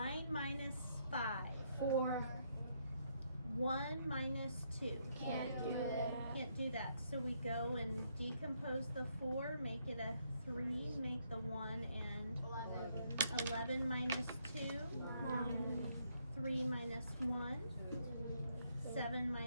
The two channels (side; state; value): both; inverted; correlation -0.74